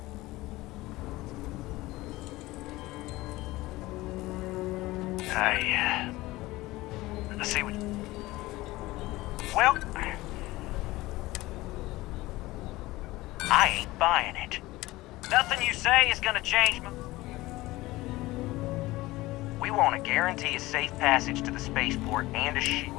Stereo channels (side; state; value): right; quieter; 19.1 dB